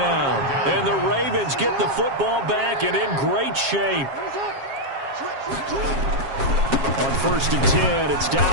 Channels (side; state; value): left; late; 7.4 ms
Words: And the Ravens get the football back and in great shape. On 1st and 10, it's